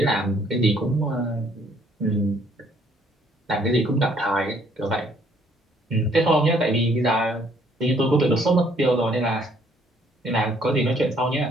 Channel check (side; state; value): both; normal; correlation 0.64